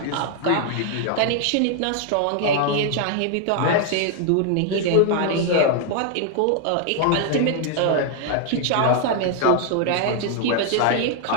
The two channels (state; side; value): different; both; correlation 0.00